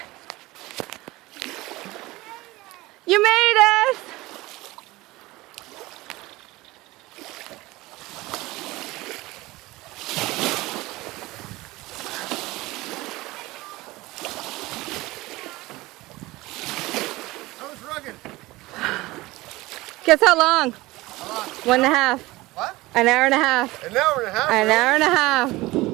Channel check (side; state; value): left; quieter; 20.0 dB